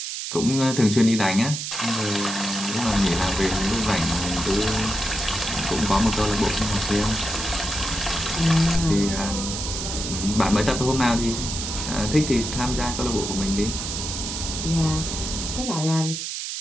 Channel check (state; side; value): noise; right; hiss, 5 dB below the sound